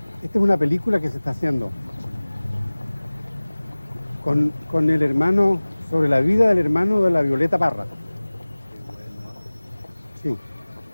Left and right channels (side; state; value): both; inverted; correlation -1.00